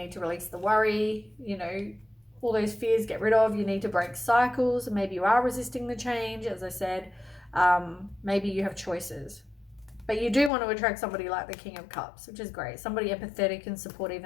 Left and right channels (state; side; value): drops out; right; at 10.5 s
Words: to release the worry, you know, all those fears, get rid of. You need to break cycles. Maybe you are resisting the change, as I said. Maybe you have choices, but you do want to attract somebody like the King of Cups, which is great. Somebody empathetic and supportive